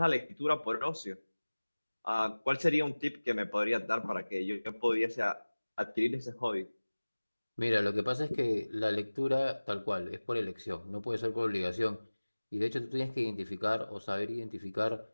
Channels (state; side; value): inverted; both; correlation -1.00